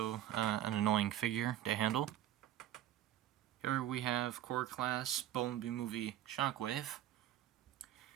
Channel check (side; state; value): left; quieter; 12.4 dB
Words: an annoying figure to handle. Here we have Core Class Bumblebee Movie Shockwave.